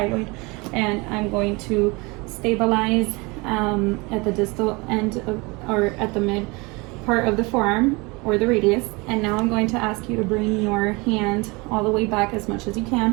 and I'm going to stabilize at the distal end of, or at the mid part of the forearm or the radius. And now I'm going to ask you to bring your hand all the way back as much as you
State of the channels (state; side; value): quieter; left; 26.3 dB